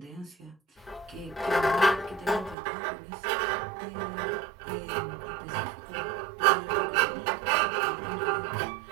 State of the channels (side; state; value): left; drops out; at 2.6 s